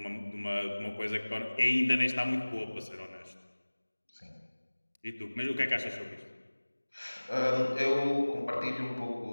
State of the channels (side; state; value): both; inverted; correlation -1.00